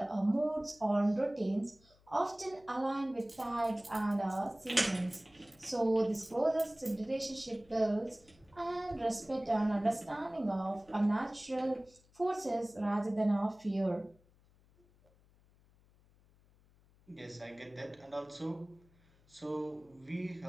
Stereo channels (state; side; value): noise; left; hum, 30 dB below the sound